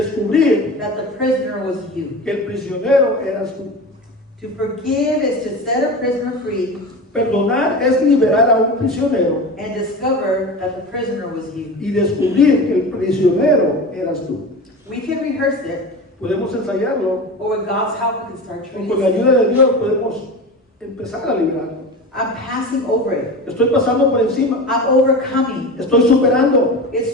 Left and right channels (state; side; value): normal; both; correlation 0.29